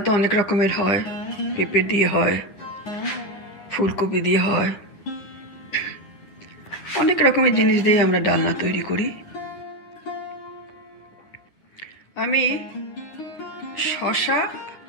তো অনেক রকমের হয়, পেঁপে দিয়ে হয়, ফুলকপি দিয়ে হয়, অনেক রকমের জিনিস দিয়ে আমরা ডালনা তৈরি করি। আমি শশা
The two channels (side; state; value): right; late; 9.5 ms